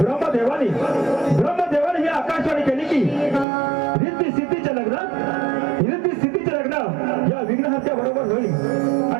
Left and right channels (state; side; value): drops out; left; at 3.5 s